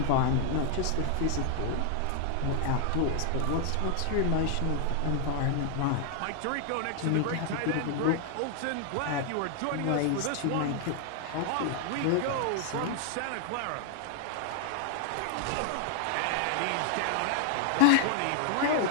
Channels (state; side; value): different; both; correlation 0.00